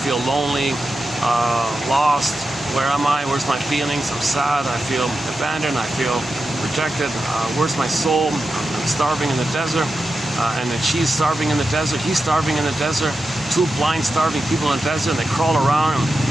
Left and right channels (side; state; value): both; normal; correlation 0.90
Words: lonely, lost, Where am I? Where's my feelings? I'm sad. I feel abandoned. I feel rejected. Where's my soul? I'm starving in the desert. And then she's starving in the desert. He's starving in the desert. Two blind, starving people in the desert. And they crawl around him.